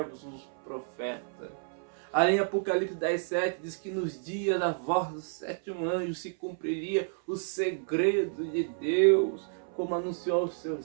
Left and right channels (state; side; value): silent; left; 57 dB below the other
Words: os profetas. Além, Apocalipse 10,7 diz que nos dias da voz do sétimo anjo se cumpriria o segredo de Deus, como anunciou aos seus